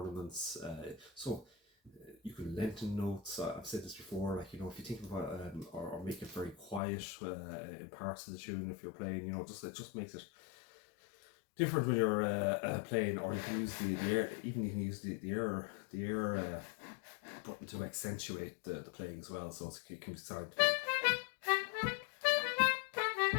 So you can lengthen notes. I've said this before. Like, you know, if you think about or make it very quiet in parts of the tune, if you're playing, you know, it just makes it different when you're playing. Or you can use the air. Even you can use the air button to accentuate the playing as well. So it can be sound.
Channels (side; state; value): right; drops out; at 6.8 s